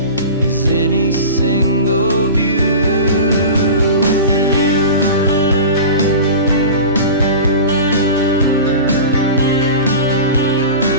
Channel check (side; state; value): both; inverted; correlation -0.33